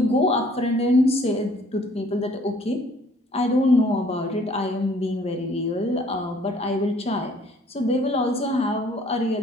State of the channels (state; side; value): normal; both; correlation 0.58